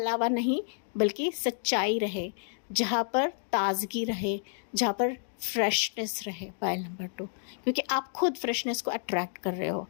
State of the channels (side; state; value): right; silent; digital silence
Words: नहीं बल्कि सच्चाई रहे, जहाँ पर ताजगी रहे, जहाँ पर फ्रेशनेस रहे। पॉइंट नंबर 2, क्योंकि आप खुद फ्रेशनेस को अट्रैक्ट कर रहे हो।